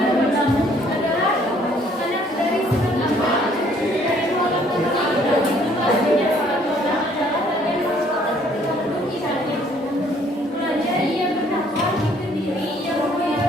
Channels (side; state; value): both; normal; correlation 0.62